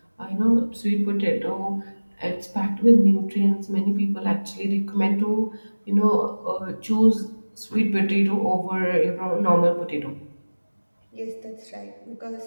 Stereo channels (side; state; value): both; inverted; correlation -1.00